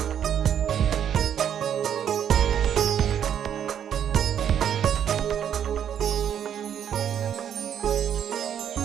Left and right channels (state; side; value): quieter; left; 9.2 dB